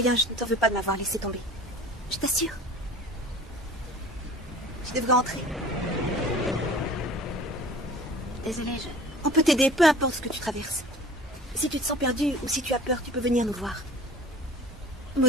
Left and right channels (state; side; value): normal; both; correlation 0.44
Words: je ne t'en veux pas de m'avoir laissé tomber. Je t'assure. Je devrais entrer. Désolée, On peut t'aider, peu importe ce que tu traverses. Si tu te sens perdu ou si tu as peur, tu peux venir nous voir.